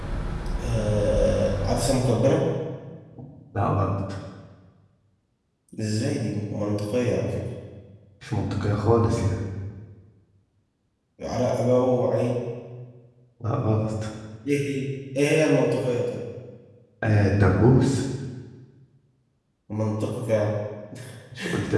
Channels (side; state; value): both; identical; correlation 1.00